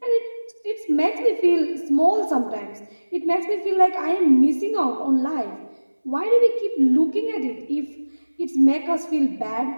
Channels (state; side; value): inverted; both; correlation -1.00